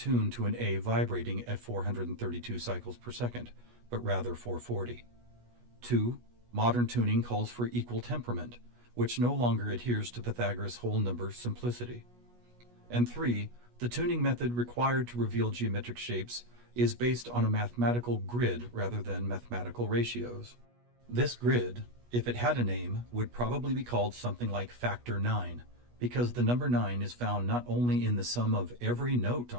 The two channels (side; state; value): left; late; 16 ms